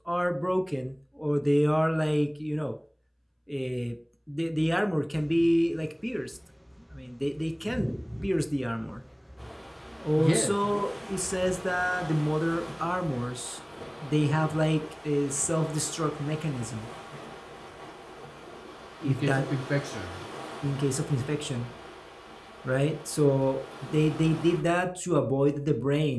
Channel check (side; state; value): both; identical; correlation 1.00